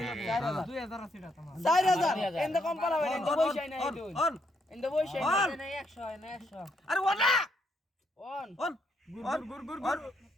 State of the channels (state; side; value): normal; both; correlation 0.75